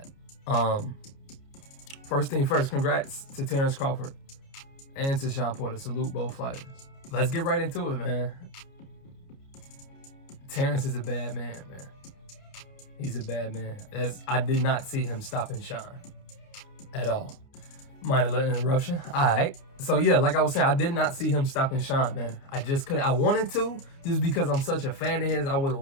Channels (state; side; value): late; right; 29 ms